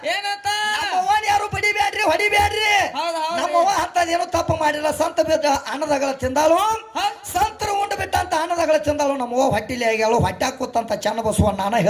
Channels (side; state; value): both; identical; correlation 1.00